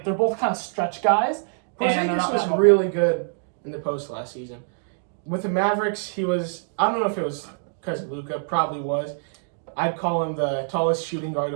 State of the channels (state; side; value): silent; left; digital silence